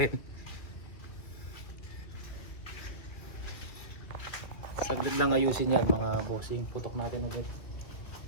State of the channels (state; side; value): late; right; 2.5 ms